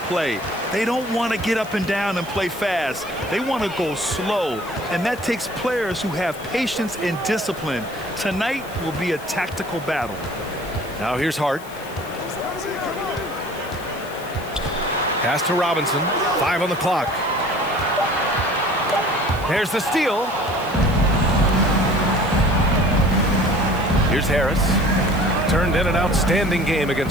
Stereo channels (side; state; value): left; noise; hiss, 20 dB below the sound